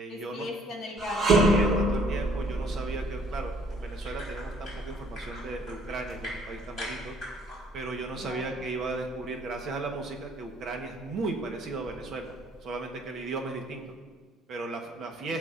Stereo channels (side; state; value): both; normal; correlation 0.61